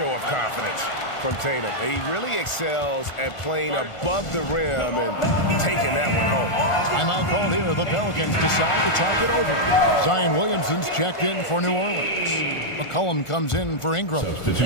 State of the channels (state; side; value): late; right; 1.4 ms